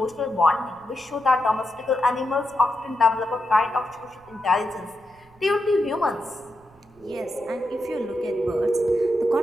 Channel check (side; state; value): right; noise; rumble, 29 dB below the sound